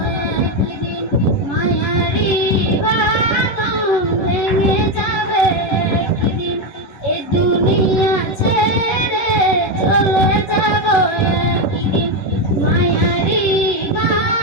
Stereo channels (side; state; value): right; late; 11 ms